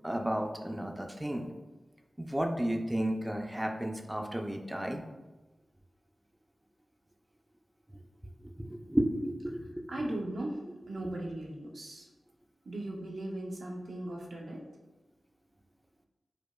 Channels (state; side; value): normal; both; correlation 0.97